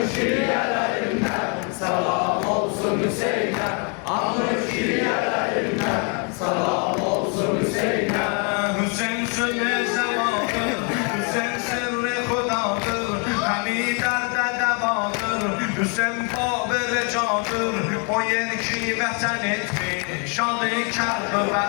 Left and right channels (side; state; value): right; quieter; 37.2 dB